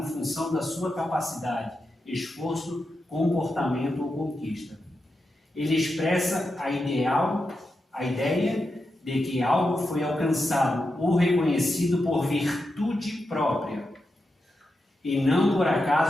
função da sua capacidade, esforço, comportamento ou conquista. Ele expressa a ideia de que algo foi alcançado ou reconhecido por virtude própria, e não por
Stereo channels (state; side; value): normal; both; correlation 0.88